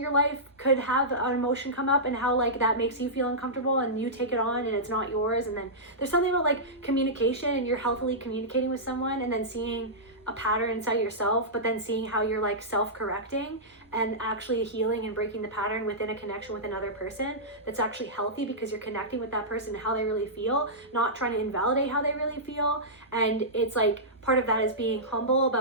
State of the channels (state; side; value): normal; both; correlation -0.15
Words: life could have an emotion come up and how like that makes you feel uncomfortable and you take it on and it's not yours. And then there's something about like communication, and you're healthily communicating with someone and then seeing a pattern inside yourself, but then seeing how you're like self-correcting and actually healing and breaking the pattern within a connection with another person that's actually healthy, because you're connecting with that person and how they really feel, not trying to invalidate how they really feel. And it's like part of that is being humble